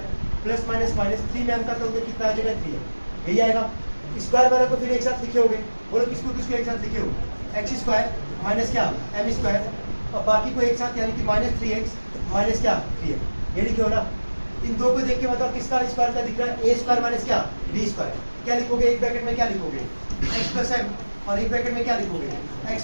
plus minus minus 3 में अंतर करोगे कितना आ जाएगा 3 यही आएगा। स्क्वायर वाले को फिर एक साथ लिखे होगे, बोलो किसको किसको एक साथ लिखे हो, एक्स स्क्वायर माइनस क्या एम स्क्वायर और बाकी को एक साथ यानी कि माइनस 3x माइनस क्या 3m, ये लिखे हो ना। इन दो को देख के बताओ किसका स्क्वायर का दिख रहा है, ए स्क्वायर माइनस क्या बी स्क्वायर, क्या लिखोगे एक ब्रैकेट में क्या लिखोगे एक्स प्लस एम और एक ब्रैकेट में क्या लिखोगे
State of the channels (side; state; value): both; inverted; correlation -1.00